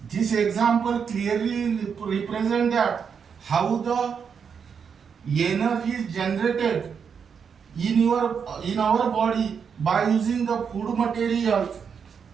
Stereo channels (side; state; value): left; quieter; 6.7 dB